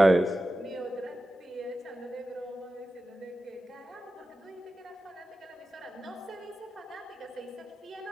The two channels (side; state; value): both; normal; correlation 0.93